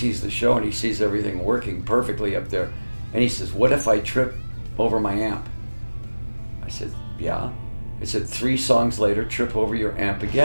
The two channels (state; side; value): inverted; both; correlation -1.00